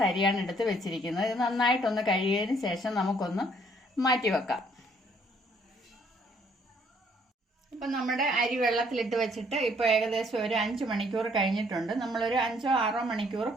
അരിയാണ് എടുത്ത് വെച്ചിരിക്കുന്നത്. ഇത് നന്നായിട്ടൊന്ന് കഴുകിയതിന് ശേഷം നമുക്കൊന്ന് മാറ്റി വെക്കാം. അപ്പം നമ്മുടെ അരി വെള്ളത്തിലിട്ട് വെച്ചിട്ട് ഇപ്പോൾ ഏകദേശം ഒരു 5 മണിക്കൂർ കഴിഞ്ഞിട്ടുണ്ട്. നമ്മളൊരു 5-6 മണിക്കൂർ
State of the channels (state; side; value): normal; both; correlation 0.64